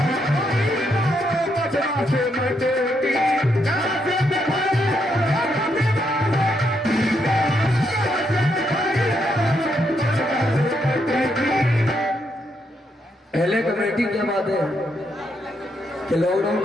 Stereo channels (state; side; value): normal; both; correlation 0.78